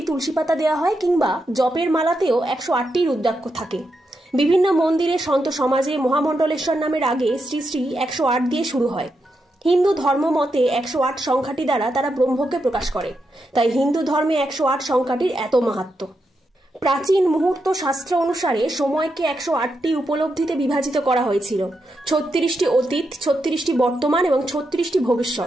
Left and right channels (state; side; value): normal; both; correlation 0.84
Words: তুলসী পাতা দেওয়া হয়, কিংবা জপের মালাতেও 108টি রুদ্রাক্ষ থাকে। বিভিন্ন মন্দিরে সন্ত সমাজে মহামণ্ডলেশ্বর নামের আগে শ্রী শ্রী 108 দিয়ে শুরু হয়। হিন্দু ধর্ম মতে 108 সংখ্যাটি দ্বারা তারা ব্রহ্মকে প্রকাশ করে, তাই হিন্দু ধর্মে 108 সংখ্যাটির এত মাহাত্ম্য। প্রাচীন মুহূর্ত শাস্ত্র অনুসারে সময়কে 108টি উপলব্ধিতে বিভাজিত করা হয়েছিল। 36টি অতীত, 36টি বর্তমান এবং 36টি